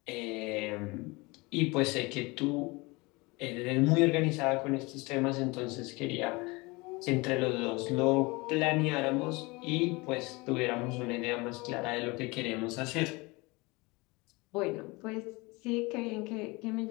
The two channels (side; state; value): right; quieter; 24.9 dB